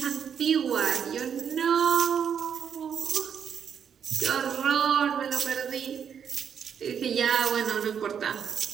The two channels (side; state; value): left; quieter; 7.8 dB